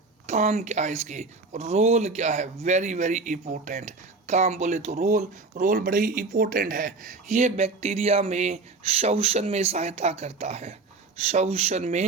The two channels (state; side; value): quieter; left; 3.8 dB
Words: काम क्या है इसके, रोल क्या है, वेरी वेरी इंपॉर्टेंट। काम बोले तो रोल बड़े ही इंपॉर्टेंट है। ये बैक्टीरिया में श्वसन में सहायता करता है, श्वसन